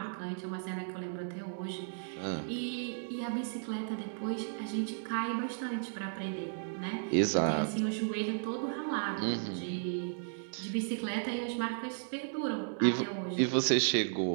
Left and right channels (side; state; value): left; silent; digital silence